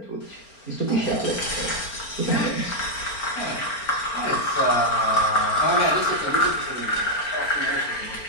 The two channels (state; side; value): late; right; 4.4 ms